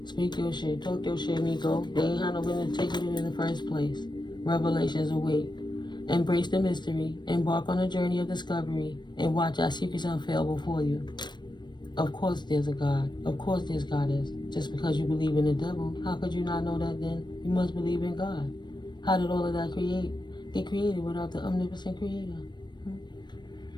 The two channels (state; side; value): late; right; 0.22 ms